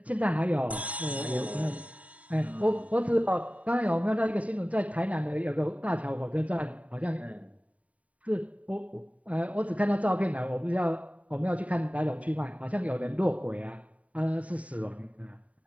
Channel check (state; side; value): late; left; 0.068 ms